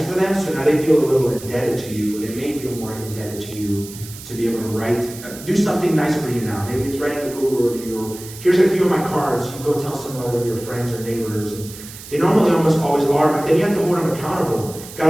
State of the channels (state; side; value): noise; right; hiss, 15 dB below the sound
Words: for them, so now they feel a little indebted to you. They may feel more indebted to you to be able to do something nice for you now. Maybe it's writing a Google review, or here's a few of my cards, you go tell some other of your friends or neighbors. And they normally almost always are, but then you have to hold them accountable.